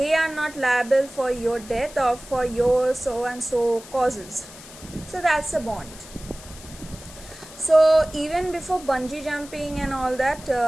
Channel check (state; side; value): noise; left; hiss, 18 dB below the sound